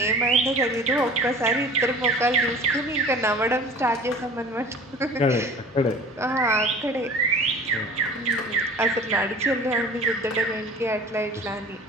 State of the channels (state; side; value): normal; both; correlation 0.43